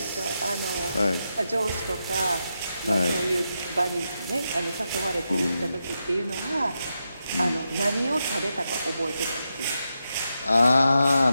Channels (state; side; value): inverted; both; correlation -0.86